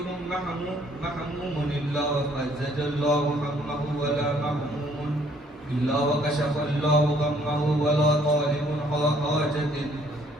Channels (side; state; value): both; normal; correlation 0.63